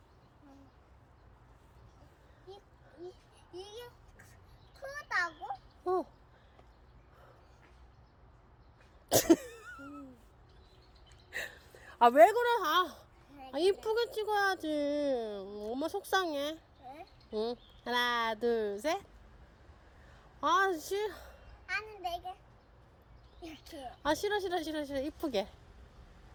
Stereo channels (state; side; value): identical; both; correlation 1.00